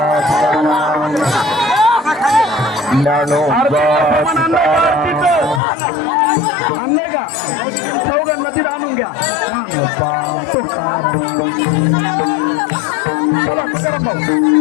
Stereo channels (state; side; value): drops out; right; at 5.6 s